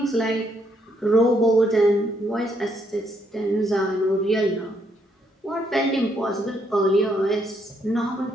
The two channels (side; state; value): both; normal; correlation 0.73